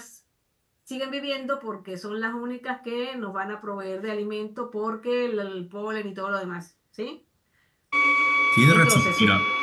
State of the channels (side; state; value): both; identical; correlation 1.00